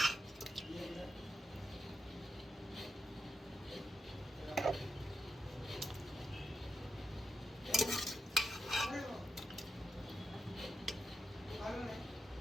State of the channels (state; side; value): normal; both; correlation 0.87